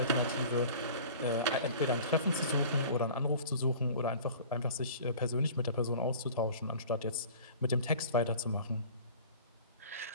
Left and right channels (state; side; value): inverted; both; correlation -0.43